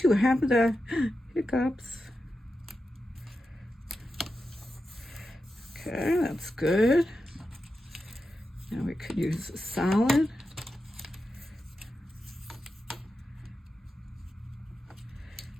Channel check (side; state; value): both; normal; correlation 0.89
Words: have the hiccups. Okay, that's good. Now we could use a solid.